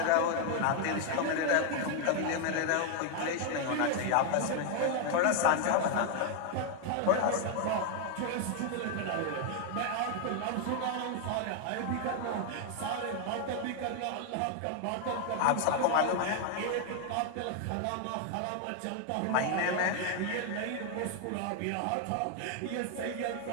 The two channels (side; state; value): both; different; correlation 0.00